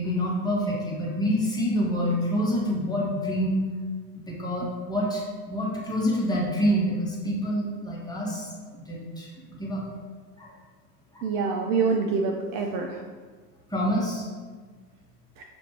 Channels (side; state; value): both; normal; correlation 0.33